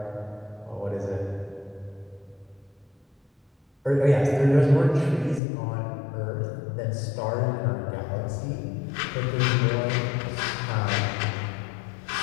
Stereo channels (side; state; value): right; drops out; at 5.4 s